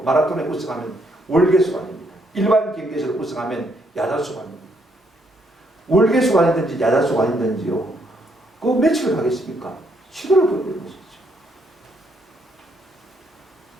마라톤에 우승하면 월계수가 아닙니다. 일반 경기에서 우승하면 야자수가 아닙니다. 월계수가 아니든지 야자수가 아니든지요, 그 며칠 가겠습니까? 시도를 보여주는 것이죠.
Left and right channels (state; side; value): normal; both; correlation 0.73